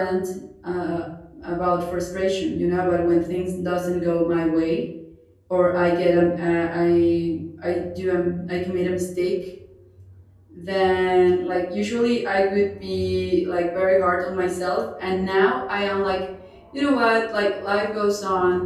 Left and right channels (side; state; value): both; identical; correlation 1.00